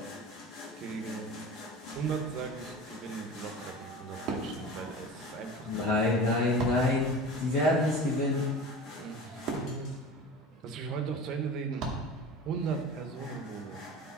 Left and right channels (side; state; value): both; normal; correlation 0.34